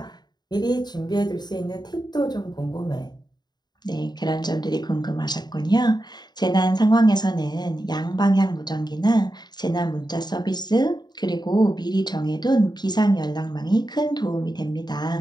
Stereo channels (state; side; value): late; right; 0.20 ms